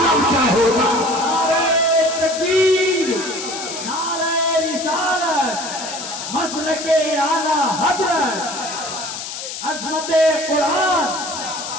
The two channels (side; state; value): left; noise; hiss, 8 dB below the sound